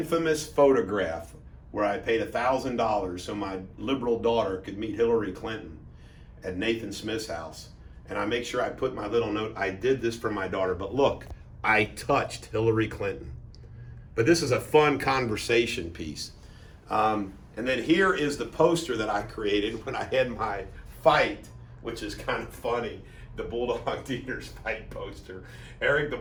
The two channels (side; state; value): both; identical; correlation 1.00